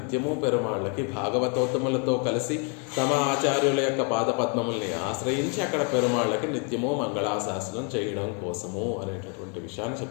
పెరుమాళ్ళకి భాగవతోత్తములతో కలిసి తమ ఆచార్యుల యొక్క పాదపద్మముల్ని ఆశ్రయించి అక్కడ పెరుమాళ్ళకి నిత్యము మంగళాశాసనం చేయడం కోసము అనేటటువంటి విషయాన్ని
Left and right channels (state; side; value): quieter; right; 37.7 dB